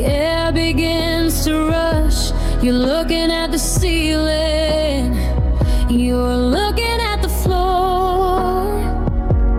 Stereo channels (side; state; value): both; identical; correlation 1.00